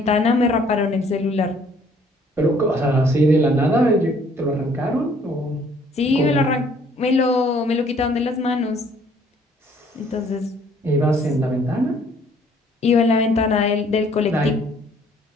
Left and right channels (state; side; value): normal; both; correlation 0.60